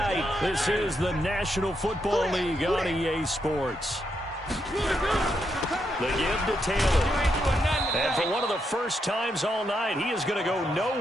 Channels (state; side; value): normal; both; correlation 0.81